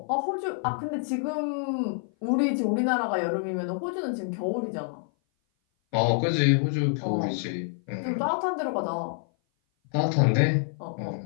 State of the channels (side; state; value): right; silent; 57 dB below the other